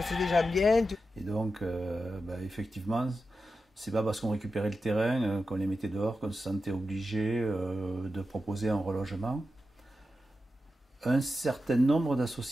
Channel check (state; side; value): normal; both; correlation 0.90